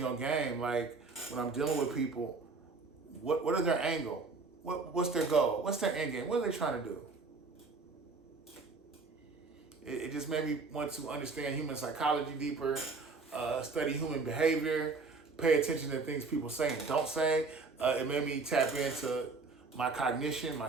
on game. Like when I'm dealing with people, what is their angle? What's their goal? What's their end game? What are they trying to do? It just made me want to understand human psychology deeper, study human behavior, pay attention to things people say and don't say. It made me tap into my cognition, my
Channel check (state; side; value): quieter; left; 4.1 dB